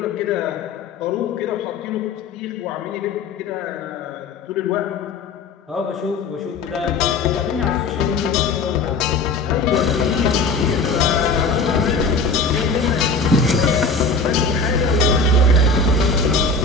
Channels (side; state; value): right; quieter; 3.7 dB